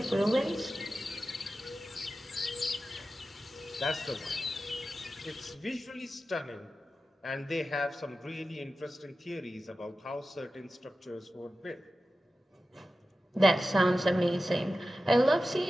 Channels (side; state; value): both; normal; correlation 0.94